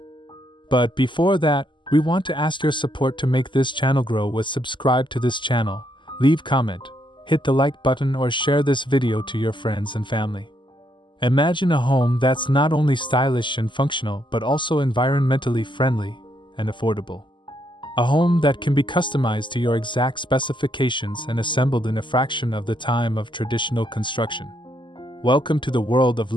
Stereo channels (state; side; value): late; right; 0.23 ms